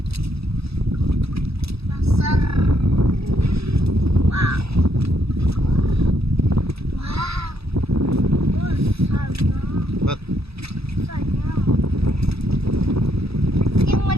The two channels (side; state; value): left; late; 0.78 ms